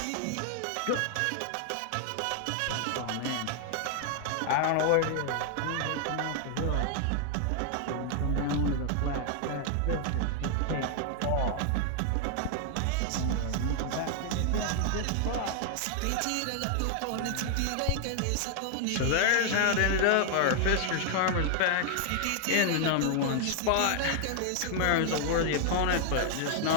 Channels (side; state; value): both; different; correlation 0.00